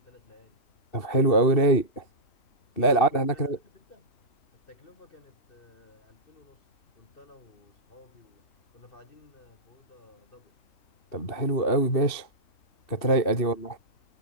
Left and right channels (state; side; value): late; right; 2.7 ms